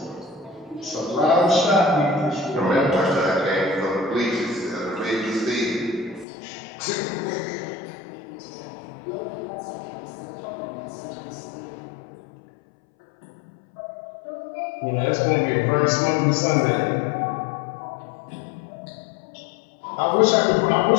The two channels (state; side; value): drops out; right; at 6.2 s